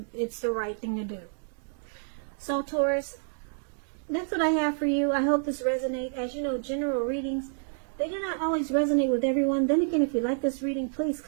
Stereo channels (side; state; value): left; silent; digital silence